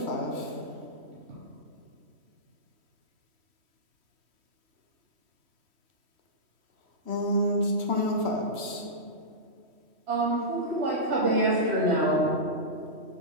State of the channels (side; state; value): left; late; 3.1 ms